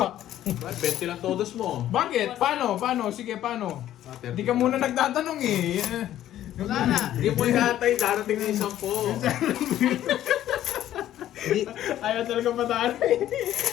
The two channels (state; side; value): quieter; right; 12.5 dB